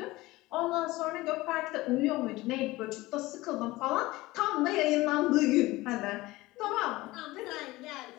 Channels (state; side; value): quieter; right; 19.5 dB